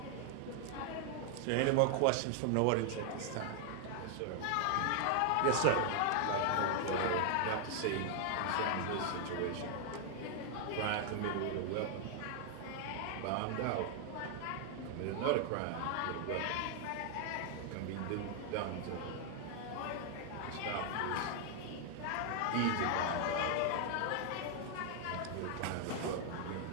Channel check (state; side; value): different; both; correlation 0.00